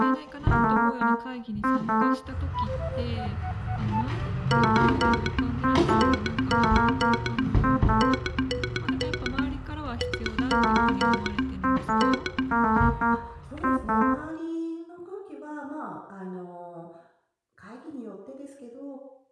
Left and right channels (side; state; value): both; identical; correlation 1.00